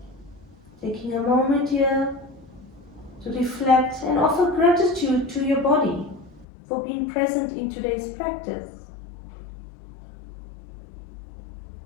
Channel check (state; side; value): drops out; right; at 6.5 s